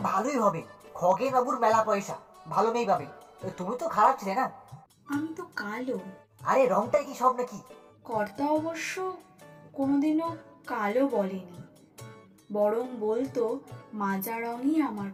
ভালোই হবে, খগেন বাবুর মেলা পয়সা, ভালো মেয়ে পাবে। তুমি তো খারাপ ছিলে না। আমি তো কালো। আরে রংটাই কি সব নাকি? কর্তা অবশ্য কোনোদিনও কালো বলেনি, বরং বলতো মাজা রঙই আমার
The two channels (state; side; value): identical; both; correlation 1.00